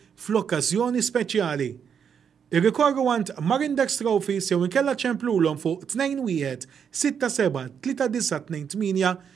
fl-okkażjoni speċjali. Irrikorru għand Marindex Trophies jew inkella ċemplulhom fuq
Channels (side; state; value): left; quieter; 7.3 dB